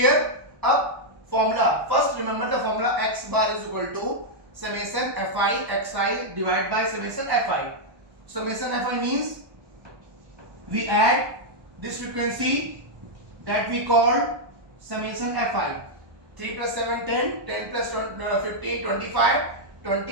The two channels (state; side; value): late; left; 1.1 ms